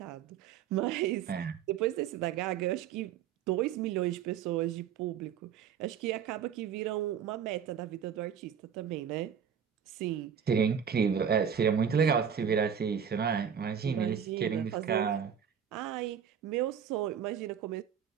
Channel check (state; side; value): quieter; left; 8.1 dB